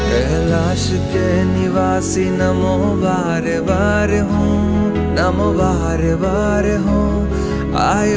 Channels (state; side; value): identical; both; correlation 1.00